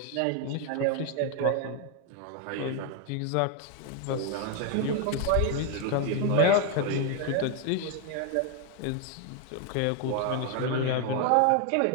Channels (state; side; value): different; both; correlation 0.01